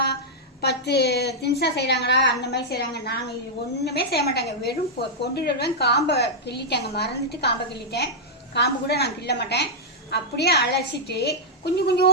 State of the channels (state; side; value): normal; both; correlation -0.07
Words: 10 தின்ஸாக செய்கிறாங்களா, அந்த மாதிரி செய்கிறாங்க. நாங்கள் இது ஒன்றுமே செய்ய மாட்டாங்க. வெறும் கொண்டுடுவேன். காம்பை கிள்ளிட்டேங்க, மறந்துட்டு காம்பை கிள்ளிட்டேன். காம்பு கூட நான் கிள்ள மாட்டேன். அப்படியே அலசிட்டு